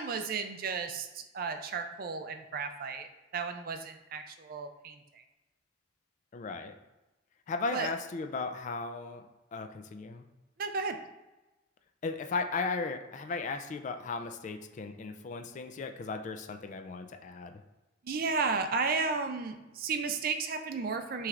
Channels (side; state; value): both; normal; correlation -0.09